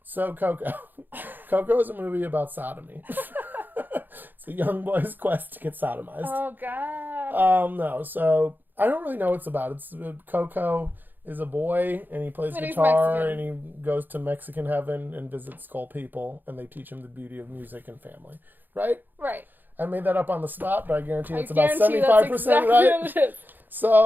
So, Coco is a movie about sodomy. It's a young boy's quest to get sodomized. Oh, God. No, so, I don't really know what it's about. It's Coco is a boy, and he plays guitar, and he goes to Mexican heaven and visits skull people, and they teach him the beauty of music and family. Right? Right. I made that up on the spot, but I guarantee it's about 75% right.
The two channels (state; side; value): late; left; 0.089 ms